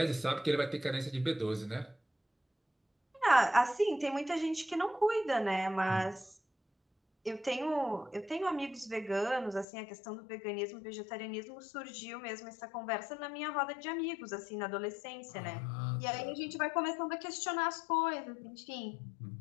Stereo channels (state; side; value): drops out; right; at 9.7 s